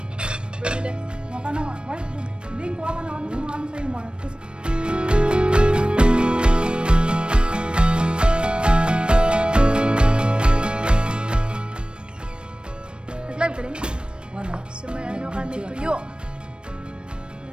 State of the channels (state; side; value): late; left; 0.055 ms